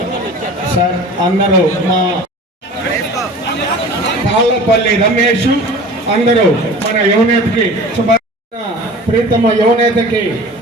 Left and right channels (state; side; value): normal; both; correlation 0.40